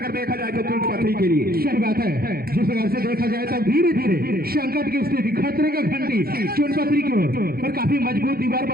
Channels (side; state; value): left; late; 0.44 ms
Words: देखा जाए तो चुनपत्री के लिए। सही बात है, जिस प्रकार से देखा जाए तो धीरे धीरे संकट की स्थिति, खतरे का घंटी चुनपत्री की ओर, और काफी मजबूत दीवार